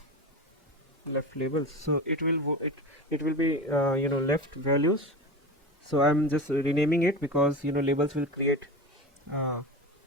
left labels. So it will be left values. So I'm just renaming it because labels will create uh,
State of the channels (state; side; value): normal; both; correlation 0.28